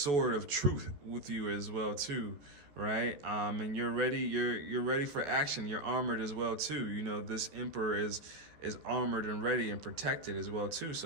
of truth with you as well too, right? And you're ready. You're ready for action. You're armored as well too. You know, this Emperor is armored and ready and protected as well too.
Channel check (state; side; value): late; left; 14 ms